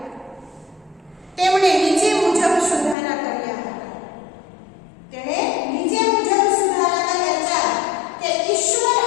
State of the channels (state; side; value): drops out; right; at 3.0 s